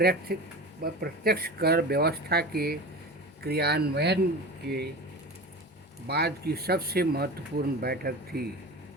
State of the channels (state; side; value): normal; both; correlation 0.31